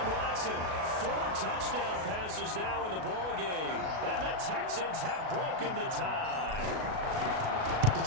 Watson, 4 touchdown passes now in the ballgame. And the Texans have broken the tie. Did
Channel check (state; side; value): late; left; 37 ms